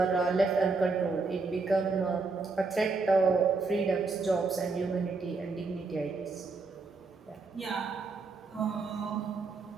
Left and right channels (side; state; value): left; quieter; 4.1 dB